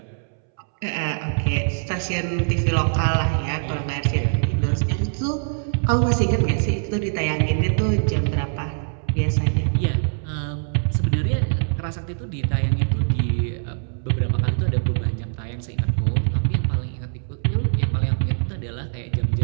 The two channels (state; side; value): silent; left; 64 dB below the other